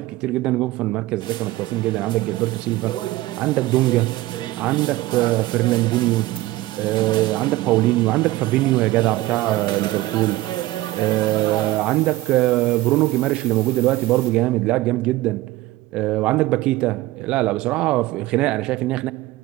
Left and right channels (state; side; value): quieter; left; 17.6 dB